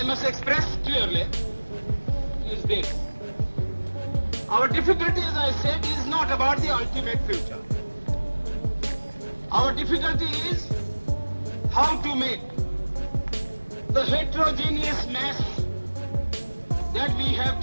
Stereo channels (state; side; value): inverted; both; correlation -1.00